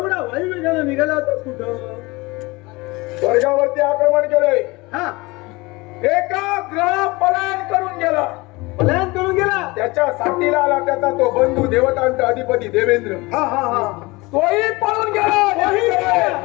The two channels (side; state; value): right; quieter; 23.4 dB